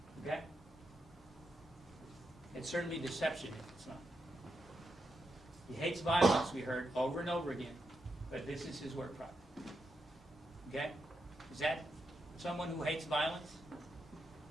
Okay? It's certainly deception if it's not. He hates violence, we heard over and over again, but this is his work product. Okay? Is that someone who hates violence?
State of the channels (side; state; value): both; normal; correlation 0.84